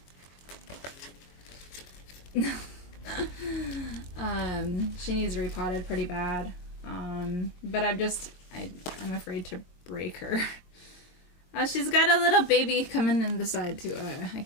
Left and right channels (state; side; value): late; right; 22 ms